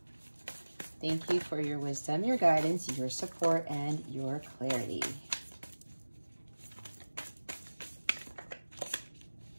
Thank you for your wisdom, your guidance, your support, and your clarity.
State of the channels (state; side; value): inverted; both; correlation -1.00